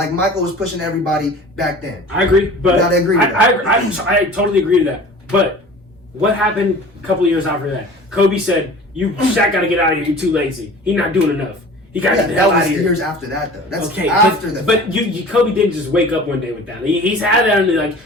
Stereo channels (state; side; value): normal; both; correlation 0.42